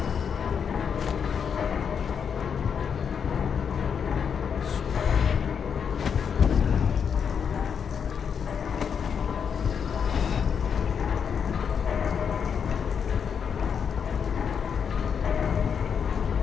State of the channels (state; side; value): quieter; right; 7.0 dB